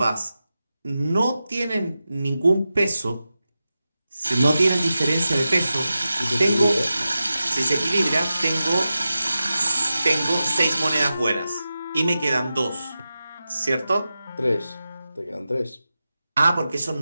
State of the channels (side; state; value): both; inverted; correlation -0.93